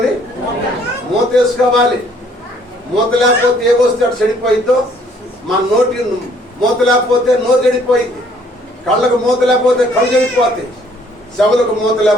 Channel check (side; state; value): both; normal; correlation 0.62